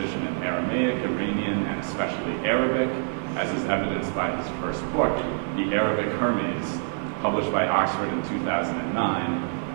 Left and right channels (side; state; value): left; silent; 61 dB below the other